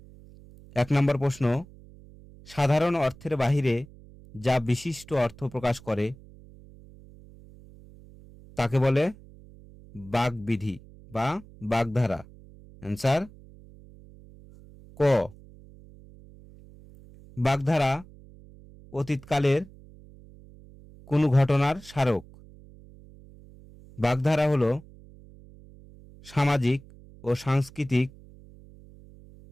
1 নম্বর প্রশ্ন, সাধারণ অর্থের বাহিরে যা বিশিষ্ট অর্থ প্রকাশ করে তাকে বলে বাগবিধি বা বাগধারা। অ্যান্সার ক। বাগধারা অতীতকালের কোনো ঘটনার স্মারক। বাগধারা হল সামাজিক ও সাংস্কৃতিক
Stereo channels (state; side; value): noise; right; hum, 22 dB below the sound